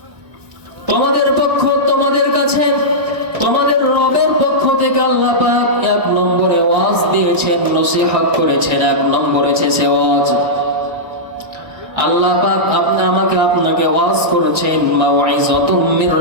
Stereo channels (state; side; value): late; left; 1.6 ms